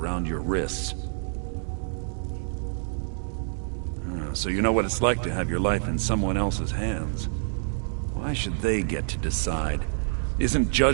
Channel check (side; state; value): left; silent; digital silence